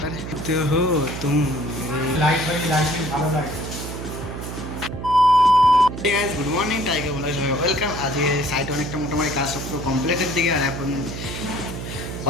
তো হো তুমি লাইট ভালো লাগে। গুড মর্নিং টাইগার বলে সবাই ওয়েলকাম। আজকে সাইট অনেকটা মোটামুটি কাজ সব পুরো কমপ্লিটের দিকে, আর এখন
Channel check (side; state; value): right; noise; hum, 7 dB below the sound